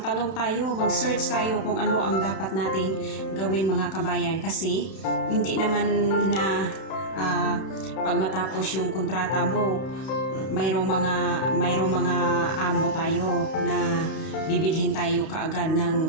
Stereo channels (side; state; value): right; late; 31 ms